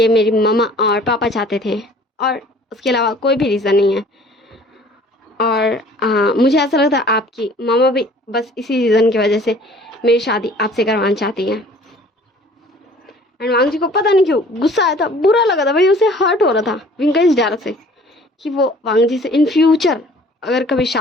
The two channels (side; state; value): both; normal; correlation 0.51